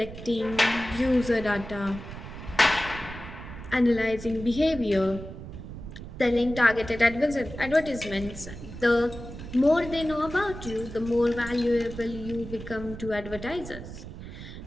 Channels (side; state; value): right; noise; rumble, 11 dB below the sound